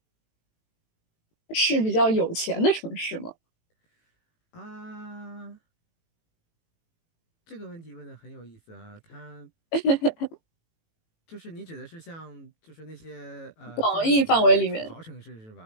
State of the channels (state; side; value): late; right; 18 ms